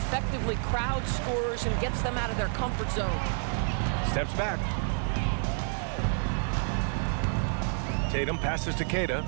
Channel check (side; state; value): left; silent; 58 dB below the other